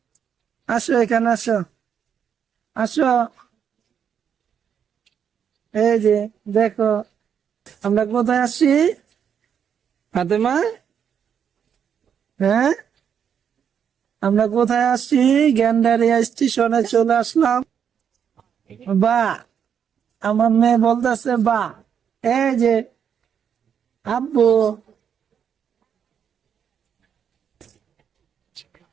আসো এখানে আসো। আসো, এই যে দেখো আমরা কোথায় আসি। ফাতেমা, হ্যাঁ, আমরা কোথায় আসি? গ্যান্ডারিয়া স্টেশনে চলে আসলাম। বা, আমার মেয়ে বলতেছে বা। এই যে আব্বু,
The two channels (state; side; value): quieter; left; 7.9 dB